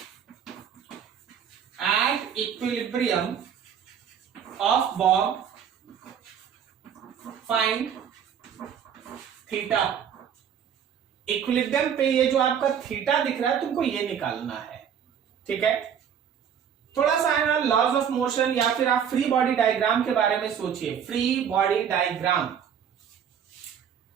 equilibrium of Bob find theta. Equilibrium पे ये जो आपका थीटा दिख रहा है तुमको ये निकालना है, ठीक है। थोड़ा सा है ना लॉज ऑफ मोशन या फिर आप फ्री बॉडी डायग्राम के बारे में सोचिए। फ्री बॉडी डायग्राम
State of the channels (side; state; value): left; quieter; 8.2 dB